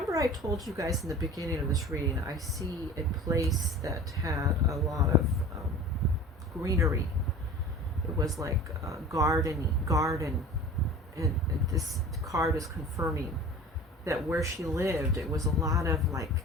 I told you guys in the beginning of this reading, I see a place that had a lot of greenery. It was like a garden, and this card is confirming that where she lived, it was a lot of, like,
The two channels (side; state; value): both; normal; correlation 0.40